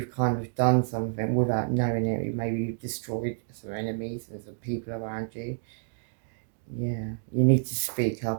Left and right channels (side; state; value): left; silent; digital silence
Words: kind of done something without knowing it. Maybe you've destroyed some enemies and some people around you. Yeah, you need to speak